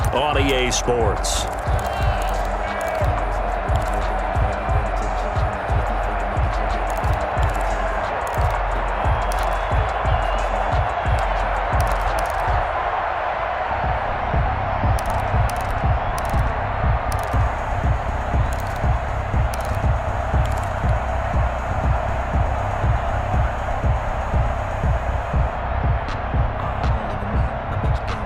on EA Sports.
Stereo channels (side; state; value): both; identical; correlation 1.00